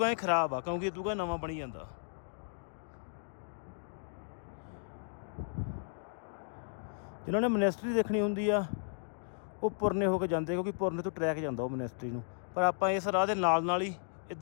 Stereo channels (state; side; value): silent; right; digital silence